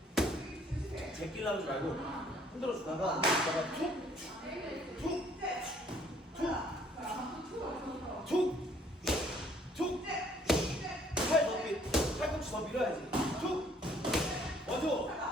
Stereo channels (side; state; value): both; normal; correlation 0.62